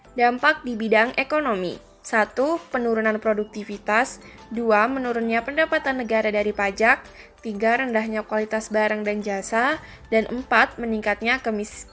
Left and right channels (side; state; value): both; identical; correlation 1.00